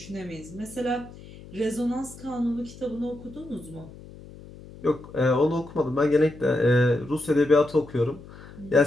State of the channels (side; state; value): left; noise; hum, 18 dB below the sound